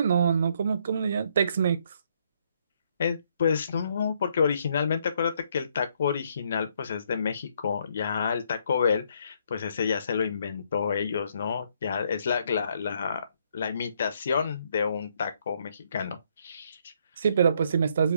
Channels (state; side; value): inverted; both; correlation -0.70